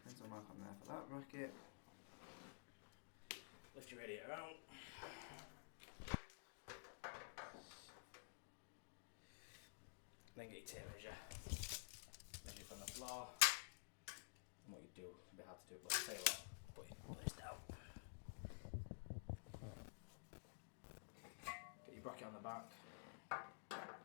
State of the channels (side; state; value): right; silent; digital silence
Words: Pencil mark on there for that bracket. Lift your radiator out. Then get your tape measure. Measure from the floor. And what you do, it's a bit hard to do it, but I'll tell you what, put this down. Get your bracket on the back.